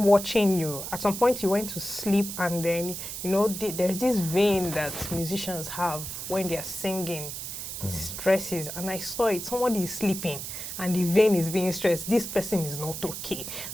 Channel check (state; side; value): noise; right; hiss, 7 dB below the sound